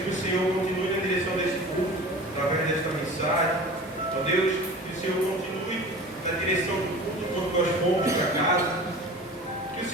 o Senhor continue na direção desse culto, através desta mensagem. Ó Deus, que o Senhor continue na direção do culto quando nós formos para casa. Que o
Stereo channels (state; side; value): normal; both; correlation 0.38